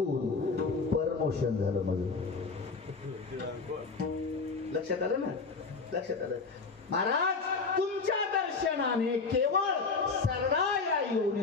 परमोशन झालं माझं. लक्षात आलं ना? लक्षात आलं महाराज. तुमच्या दर्शनाने केवळ सरळा या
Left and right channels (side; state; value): right; quieter; 4.4 dB